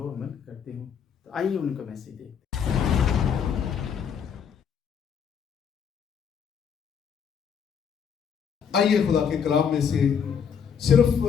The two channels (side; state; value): right; quieter; 7.3 dB